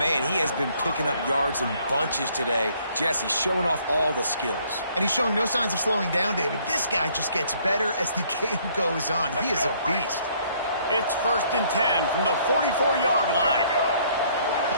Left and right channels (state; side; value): inverted; both; correlation -0.63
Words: he has been picking up yards in bunches today. Jesse showing off all the skills. And he's showing no signs of slowing down, David. This guy just gets better as the game goes on. He is a beast. It's 1st and 10 from the 44-yard line.